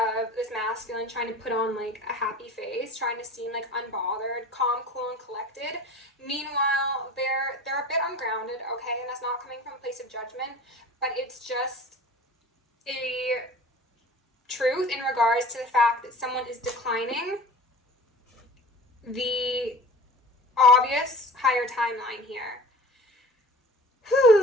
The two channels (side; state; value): both; normal; correlation 0.40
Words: this masculine trying to put on like a happy face, trying to seem like unbothered, calm, cool, and collected. Meanwhile, they're a bit ungrounded, okay? And that's not coming from a place of judgment, but it's just a truth in regards to the fact that someone is declining the obvious higher timeline here.